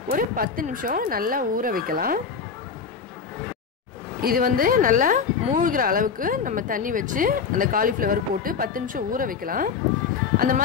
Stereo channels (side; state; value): right; quieter; 6.0 dB